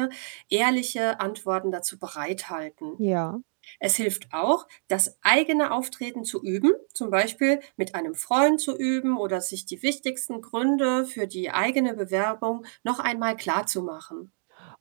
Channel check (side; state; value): left; silent; digital silence